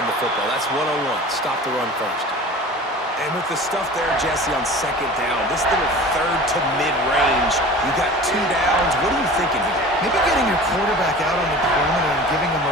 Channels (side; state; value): both; normal; correlation 0.39